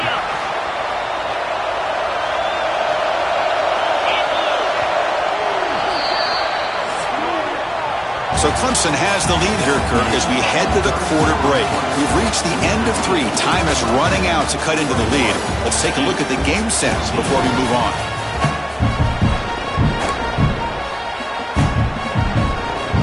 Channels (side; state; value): both; identical; correlation 1.00